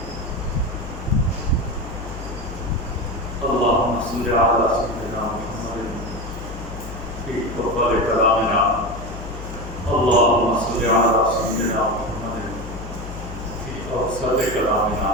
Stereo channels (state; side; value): noise; left; hum, 10 dB below the sound